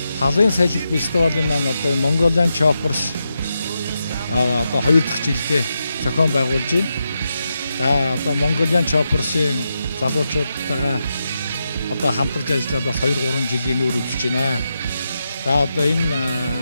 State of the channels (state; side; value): inverted; both; correlation -0.87